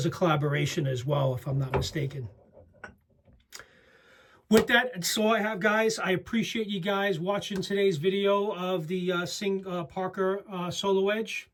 a collaboration as well, if I'm not mistaken. With that, that's all I have, guys. I appreciate you guys watching today's video of the Parker SoloEdge.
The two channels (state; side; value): identical; both; correlation 1.00